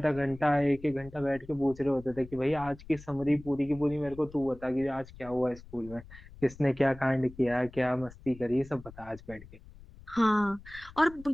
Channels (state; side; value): noise; left; rumble, 19 dB below the sound